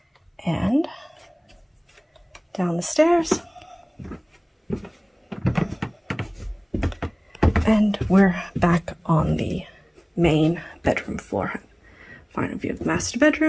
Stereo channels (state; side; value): identical; both; correlation 1.00